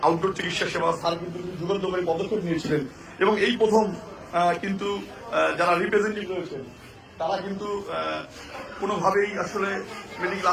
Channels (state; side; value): identical; both; correlation 1.00